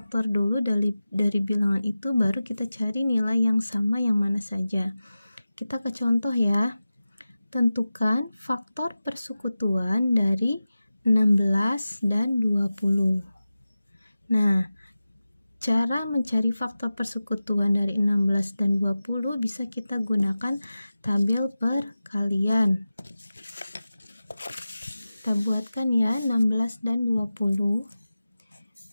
dulu dari bilangan itu, baru kita cari nilai yang sama yang mana saja. Kita ke contoh ya. Tentukan faktor persekutuan dari 16 dan 20. Nah, cara mencari faktor persekutuan dari 16 dan 20 bisa kita gunakan tabel perkalian. Kita buatkan ya, 16 dan 20.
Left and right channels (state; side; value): inverted; both; correlation -0.95